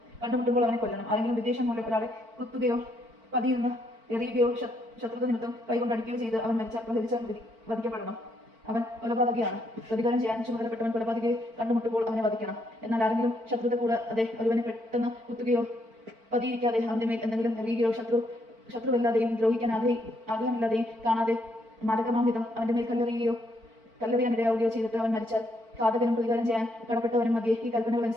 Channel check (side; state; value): left; late; 4.5 ms